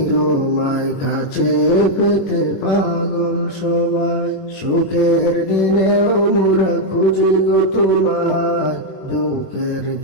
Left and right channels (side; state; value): right; late; 21 ms